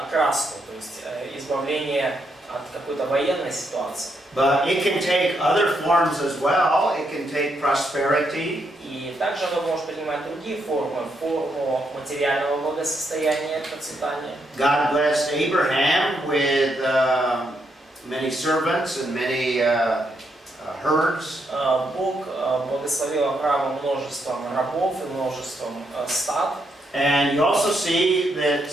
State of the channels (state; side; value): normal; both; correlation 0.78